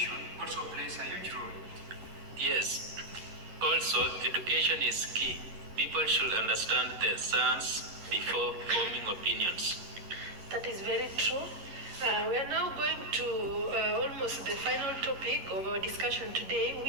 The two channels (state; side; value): late; left; 11 ms